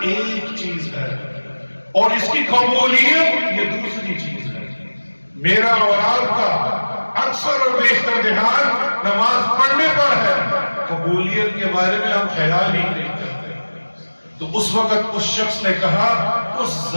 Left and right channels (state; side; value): inverted; both; correlation -1.00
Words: ایک چیز ہے اور اس کی قبولیت یہ دوسری چیز ہے۔ میرا اور آپ کا اکثر اور بیشتر دھیان نماز پڑھنے پر ہے، قبولیت کے بارے میں ہم خیال ہی نہیں کرتے۔ تو اس وقت اس شخص نے کہا، اس